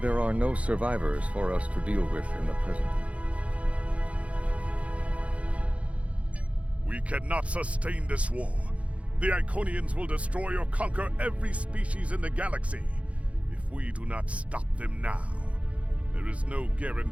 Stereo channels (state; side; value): late; left; 0.064 ms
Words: are no survivors for us to deal with in the present. We cannot sustain this war. The Iconians will destroy or conquer every species in the galaxy if we do not stop them now. There is no